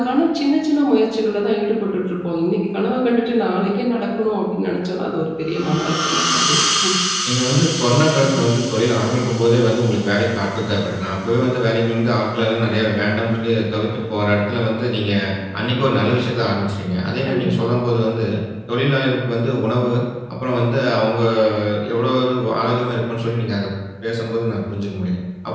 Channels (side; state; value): both; identical; correlation 1.00